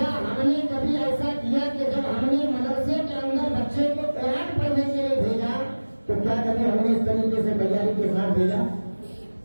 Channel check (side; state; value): both; inverted; correlation -1.00